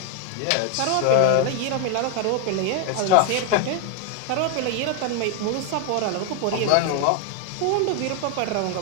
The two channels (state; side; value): different; both; correlation 0.01